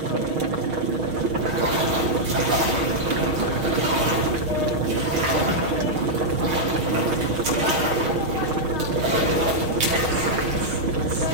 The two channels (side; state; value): left; late; 6.4 ms